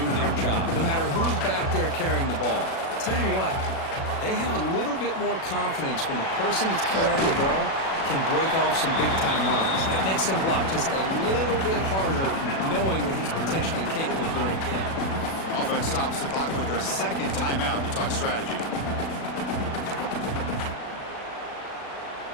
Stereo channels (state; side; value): late; right; 37 ms